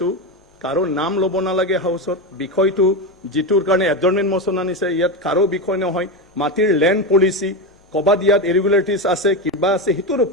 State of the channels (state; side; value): normal; both; correlation 0.15